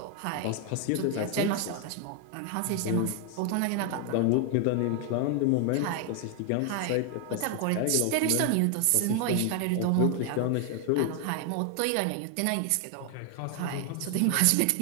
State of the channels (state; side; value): different; both; correlation 0.00